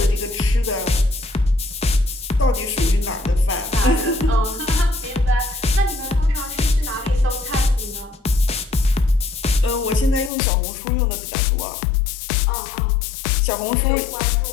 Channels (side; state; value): right; drops out; at 10.3 s